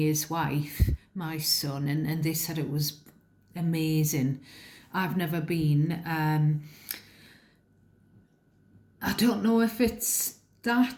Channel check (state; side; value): identical; both; correlation 1.00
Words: wife, my son, and they said it was amazing. I've never been. I don't know if it's